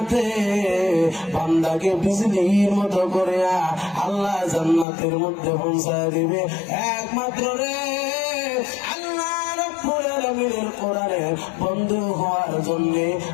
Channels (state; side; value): drops out; right; at 4.9 s